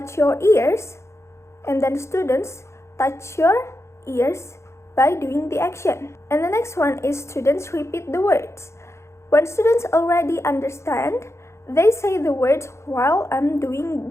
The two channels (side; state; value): right; late; 0.13 ms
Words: your ears, and then students touch your ears by doing the action. And the next one is students repeat the words. When students already understand, they say the words while